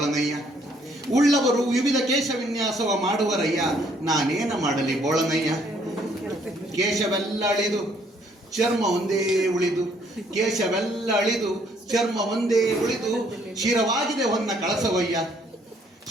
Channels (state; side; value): normal; both; correlation 0.65